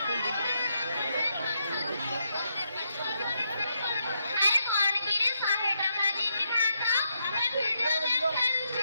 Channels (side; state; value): both; inverted; correlation -0.80